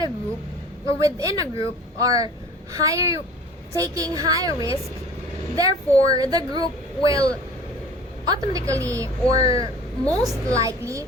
a group or within a group are taking higher risk, therefore the group will automatically or most likely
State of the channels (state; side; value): normal; both; correlation 0.45